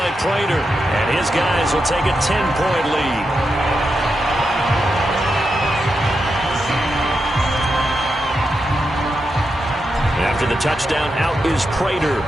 Prater. And his guys will take a 10-point lead. After the touchdown, out is Prater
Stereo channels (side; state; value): both; normal; correlation 0.86